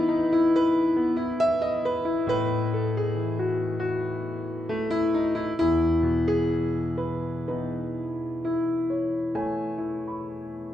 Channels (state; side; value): normal; both; correlation 0.85